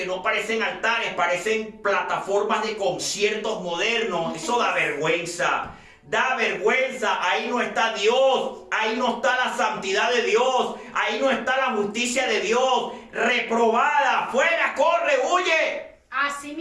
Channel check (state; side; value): identical; both; correlation 1.00